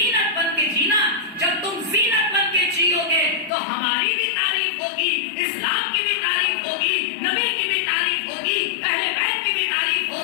بن کے جینا، جب تم زینت بن کے جیو گے تو ہماری بھی تعریف ہوگی، اسلام کی بھی تعریف ہوگی، نبی کی بھی تعریف ہوگی، اہل بیت کی بھی تعریف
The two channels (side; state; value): right; drops out; at 3.5 s